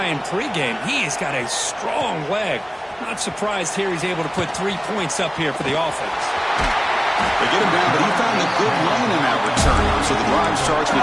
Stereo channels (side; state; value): both; identical; correlation 1.00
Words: in pregame. He has got a strong leg. Not surprised here he's able to put 3 points up here for the offense. They get him down, but he found a good lane in that return, so the drive starts with